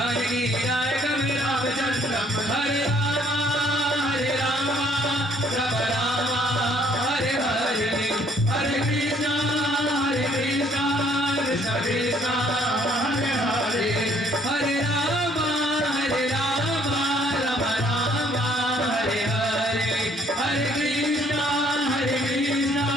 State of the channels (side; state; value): both; normal; correlation 0.62